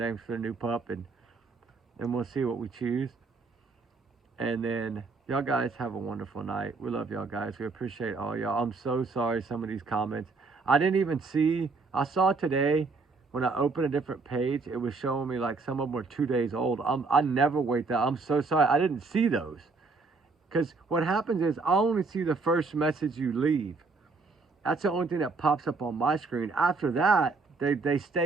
for the new pup and we'll see what we choose. And then y'all guys have a wonderful night. We love y'all guys. We appreciate all y'all. I'm so sorry some of these comments. I didn't even see. I saw today when I opened a different page, it was showing me like some of them were 2 days old. I never wait that. I'm so sorry. I didn't see those. Because what happens is I only see the first message you leave. That's the only thing that pops up on my screen. After that, they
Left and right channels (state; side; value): quieter; left; 4.1 dB